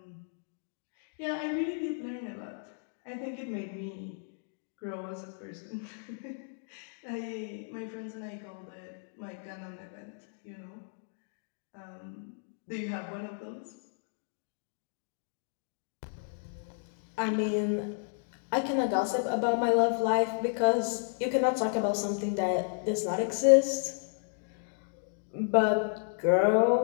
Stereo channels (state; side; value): silent; right; digital silence